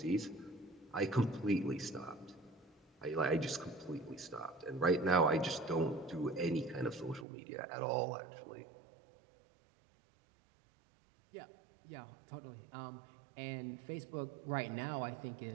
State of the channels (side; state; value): left; drops out; at 7.2 s